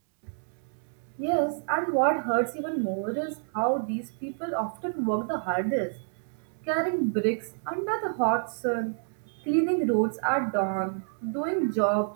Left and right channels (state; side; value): silent; left; digital silence